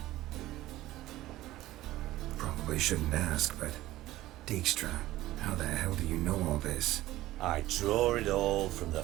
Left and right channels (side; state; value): left; quieter; 16.1 dB